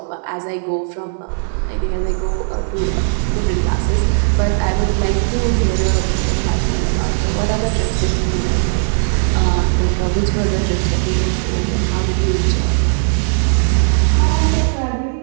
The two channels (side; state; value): left; silent; digital silence